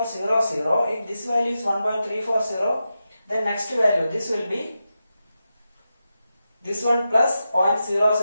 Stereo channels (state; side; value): inverted; both; correlation -0.90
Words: if this value is 1.340, then next value, this will be this one plus